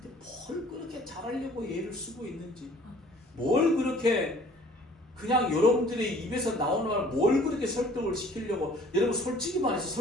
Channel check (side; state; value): both; normal; correlation 0.54